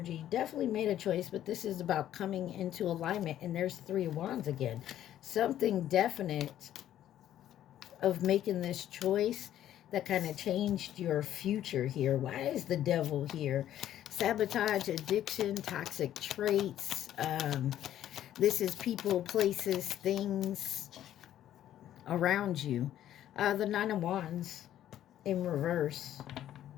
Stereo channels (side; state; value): right; quieter; 11.8 dB